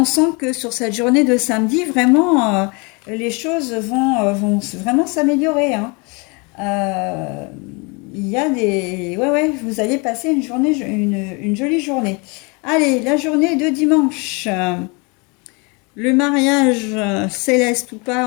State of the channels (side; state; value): right; quieter; 30.4 dB